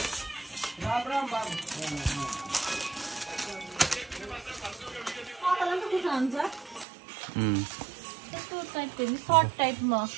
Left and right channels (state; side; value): drops out; left; at 6.9 s